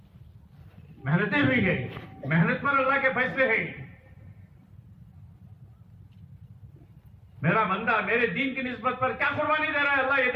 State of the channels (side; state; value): both; identical; correlation 1.00